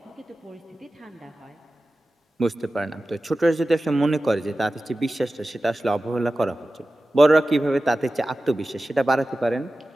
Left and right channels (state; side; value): normal; both; correlation 0.95